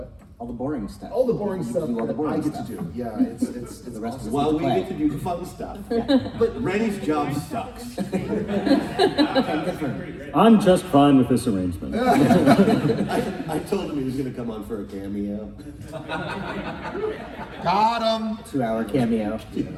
All the boring stuff. All the boring You stuff do all the that boring I get stuff. to do. Yeah, it's The rest awesome. of Well, we play. get to do the fun stuff. But Rennie's job sucks. I'm just fine with this arrangement. I told him he was gonna come on for a cameo. Got him. 2-hour cameo.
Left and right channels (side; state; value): both; identical; correlation 1.00